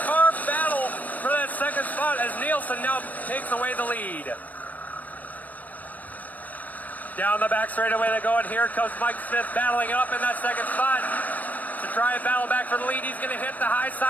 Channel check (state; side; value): late; right; 0.079 ms